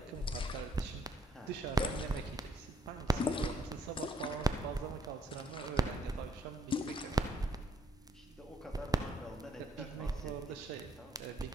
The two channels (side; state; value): both; normal; correlation 0.66